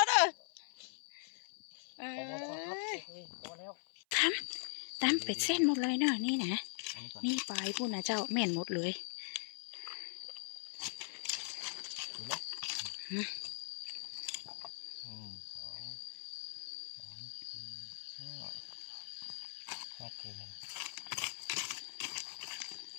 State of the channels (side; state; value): right; silent; 51 dB below the other